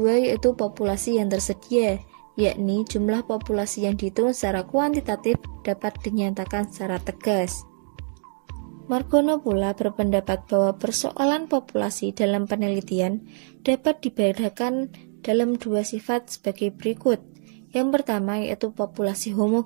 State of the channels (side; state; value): left; silent; 62 dB below the other